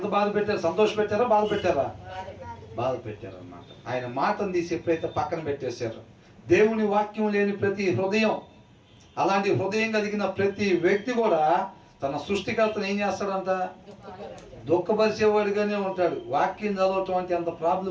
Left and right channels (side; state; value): both; identical; correlation 1.00